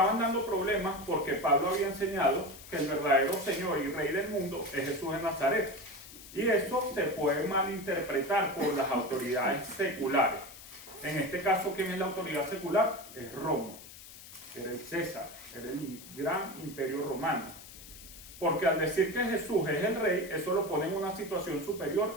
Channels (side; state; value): left; noise; hiss, 16 dB below the sound